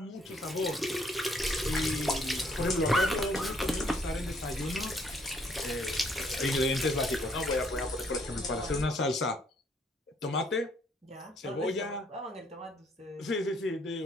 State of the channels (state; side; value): normal; both; correlation 0.66